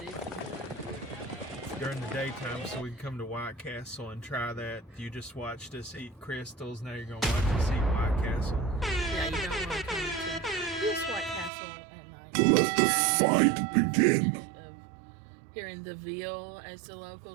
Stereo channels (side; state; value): left; drops out; at 11.5 s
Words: During the daytime, so we can come to White Castle and try that. You just watched us eat Krystals, now you're going to watch us eat White Castle. Yeah, you don't want to come to this White Castle at night. Let the fight begin. Of here in the Ville, as the